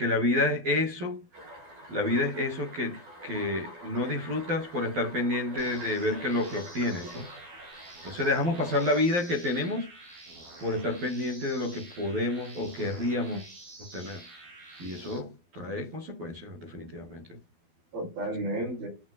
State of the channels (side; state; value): left; late; 12 ms